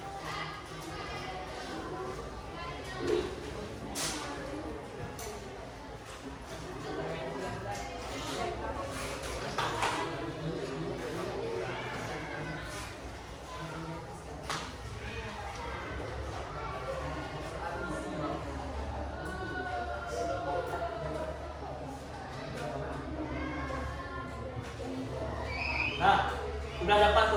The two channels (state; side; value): identical; both; correlation 1.00